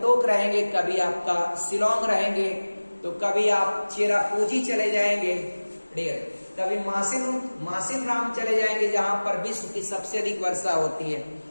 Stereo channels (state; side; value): inverted; both; correlation -1.00